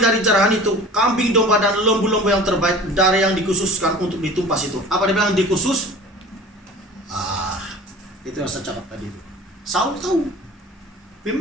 jarahan itu kambing, domba dan lembu-lembu yang terbaik dari yang dikhususkan untuk ditumpas itu. Apa dia bilang dikhusus? Itu yang saya cakap tadi itu. Saul tahu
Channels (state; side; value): normal; both; correlation 0.42